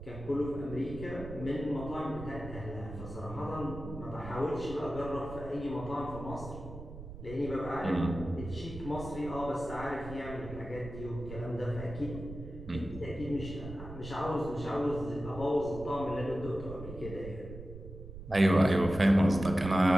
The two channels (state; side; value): noise; right; rumble, 12 dB below the sound